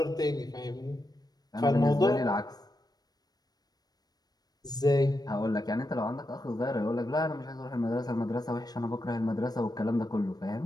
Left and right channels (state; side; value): late; right; 0.19 ms